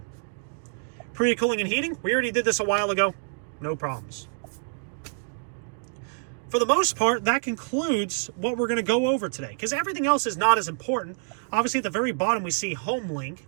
Pre-cooling and heating, we already did this a while ago. No problems. For the most part, that concludes what we're going to go over today, because everything else is not as important. Obviously, at the very bottom, we see Home Link,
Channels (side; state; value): left; silent; digital silence